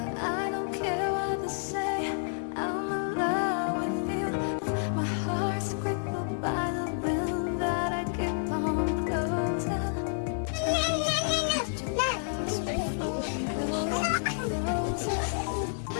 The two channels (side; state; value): right; silent; digital silence